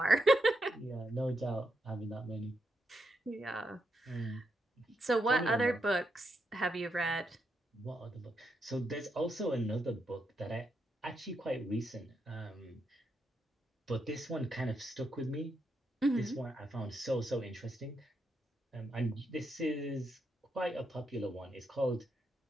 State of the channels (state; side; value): normal; both; correlation 0.82